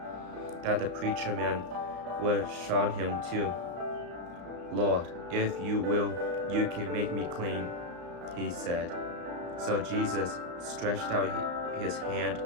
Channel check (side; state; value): left; late; 34 ms